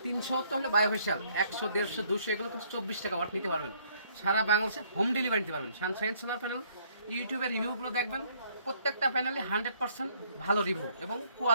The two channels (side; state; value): both; inverted; correlation -0.64